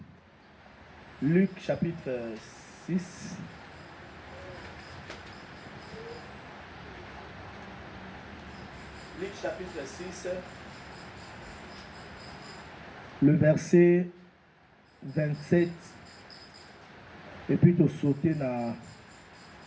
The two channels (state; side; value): identical; both; correlation 1.00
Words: Luc chapitre 6. Luc chapitre 6. Le verset 27. Et puis tu sauter dans